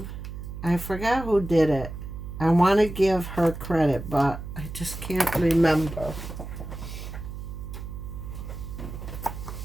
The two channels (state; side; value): noise; right; hum, 9 dB below the sound